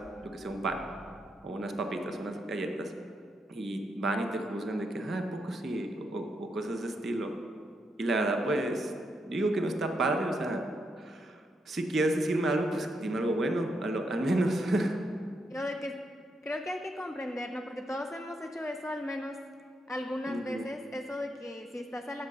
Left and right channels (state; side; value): normal; both; correlation 0.81